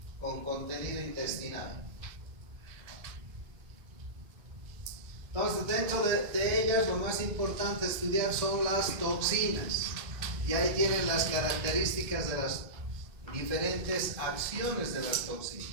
con contenido intestinal. Entonces, dentro de ellas, lo más importante estudiar son las toxinas. Y ahí tienen las características de las diferentes acciones de las toxinas.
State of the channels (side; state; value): left; late; 2.5 ms